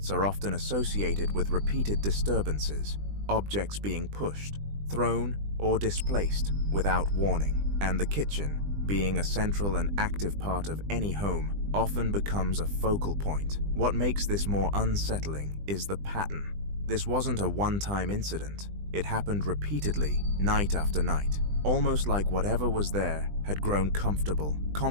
are often associated with repeated disturbances, objects being pushed, thrown, or displaced without warning, and the kitchen, being a central and active part of any home, often becomes a focal point. What makes this more unsettling is the pattern. This wasn't a one-time incident. It happened repeatedly, night after night, almost like whatever was there had grown comfortable,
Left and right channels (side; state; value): left; late; 20 ms